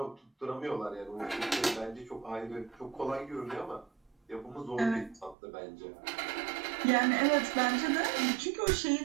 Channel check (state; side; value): drops out; left; at 5.4 s